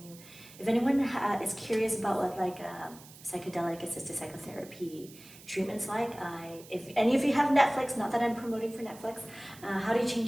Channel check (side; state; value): right; noise; hiss, 20 dB below the sound